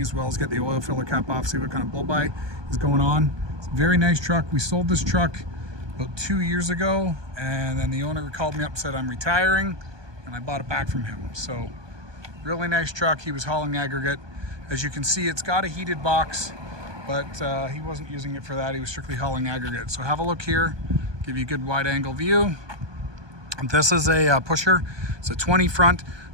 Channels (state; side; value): late; left; 1.2 ms